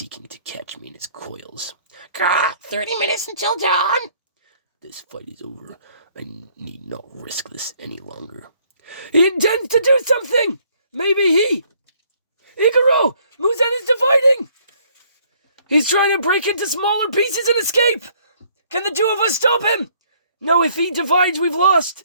to catch me in its coils. 30 minutes until dawn! This fight is over. I need not risk this any longer. he intends to do something! Maybe he... Igaro! Muzan is dividing! He's trying to break into smaller pieces and escape! Can the 2 of us stop him? No, if he divides, we've lost.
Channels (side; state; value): both; inverted; correlation -0.64